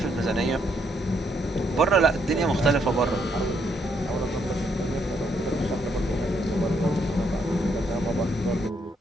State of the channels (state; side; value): normal; both; correlation 0.74